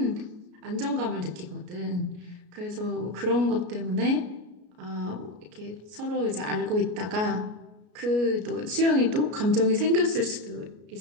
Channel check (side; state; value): left; late; 33 ms